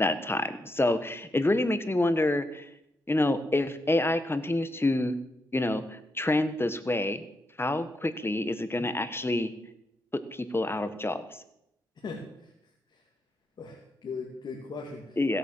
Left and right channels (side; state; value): both; normal; correlation 0.82